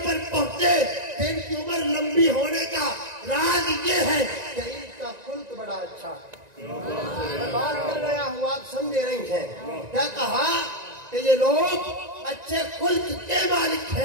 पहुंचे कि इनकी उम्र लंबी होने का राज ये है कि इनका खुल्क बड़ा अच्छा है। मैं बात कर रहा हूँ, आप समझे रही हैं। क्या कहा कि ये लोग अच्छे खुल्क के मालिक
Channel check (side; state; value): left; late; 1.9 ms